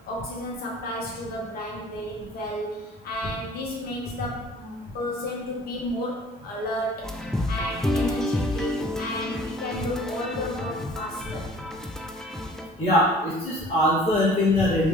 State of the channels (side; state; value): both; normal; correlation 0.49